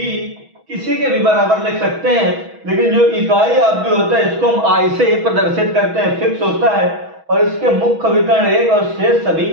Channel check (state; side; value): late; left; 6.2 ms